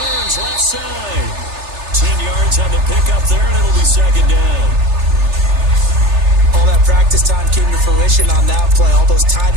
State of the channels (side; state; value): left; late; 3.3 ms